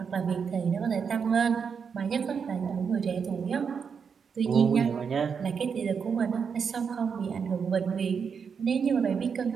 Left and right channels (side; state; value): left; quieter; 6.4 dB